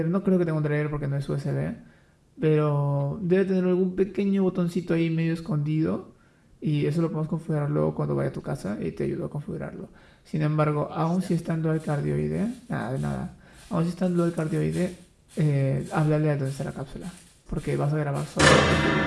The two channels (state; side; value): identical; both; correlation 1.00